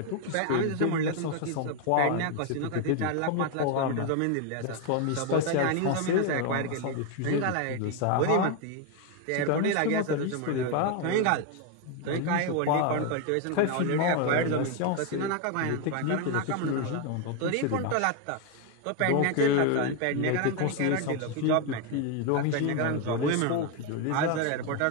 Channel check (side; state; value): both; different; correlation 0.01